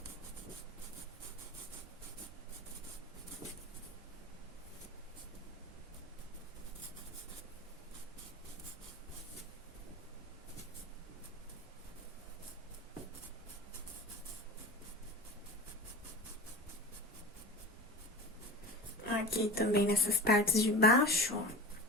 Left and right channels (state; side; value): normal; both; correlation 0.32